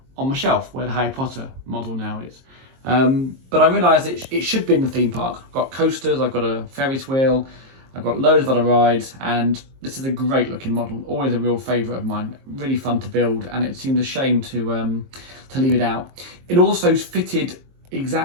on my shelf where the Harry Potter model now is. But I realised it should be in the theme park. I've got coasters, I've got a Ferris wheel, I've got loads of other rides, and this is a great looking model, always a real favourite of mine, really fun to build, and it seemed a shame to leave it out. It also fitted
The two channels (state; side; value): late; left; 22 ms